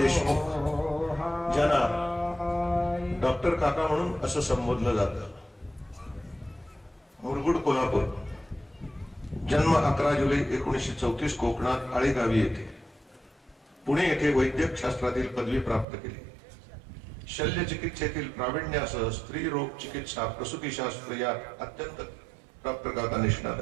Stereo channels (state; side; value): drops out; left; at 15.9 s